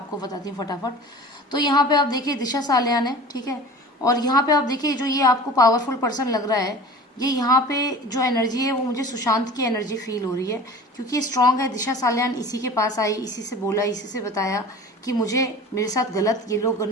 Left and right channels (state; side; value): normal; both; correlation 0.39